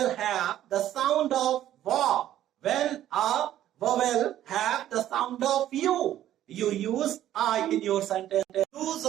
have the sound of wa, when a vowel have the sound of U, you use a in your sentence. Use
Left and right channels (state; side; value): quieter; left; 12.4 dB